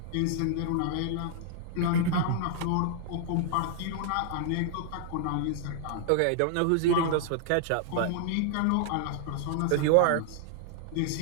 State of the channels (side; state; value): both; different; correlation 0.00